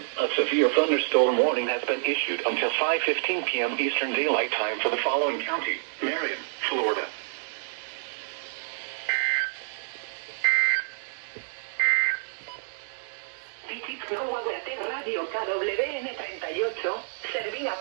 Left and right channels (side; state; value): left; silent; 60 dB below the other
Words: a severe thunderstorm warning has been issued until 5:15 p.m. Eastern Daylight Time for the following county: Marion, Florida. Radio KWN38, servida